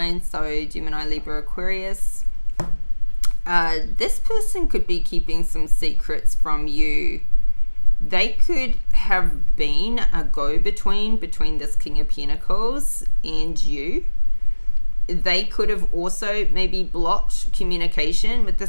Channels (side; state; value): both; inverted; correlation -1.00